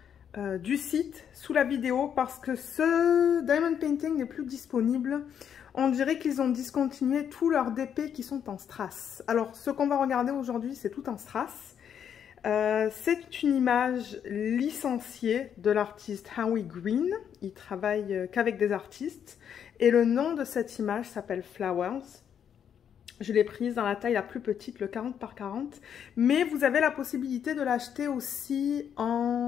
du site sous la vidéo parce que ce diamond painting n'est plus disponible. On dirait qu'ils ont discontinué tous leurs DP qui sont en strass. Alors, ce qu'on va regarder aujourd'hui, c'est tout en strass. C'est une image licenciée de l'artiste Howie Green. Il travaille qu'avec des artistes. Et le nom de cette image s'appelle Flowers. Je l'ai prise dans la taille la plus petite, le 40 par 40. Mais vous avez la possibilité de l'acheter aussi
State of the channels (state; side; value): quieter; right; 8.5 dB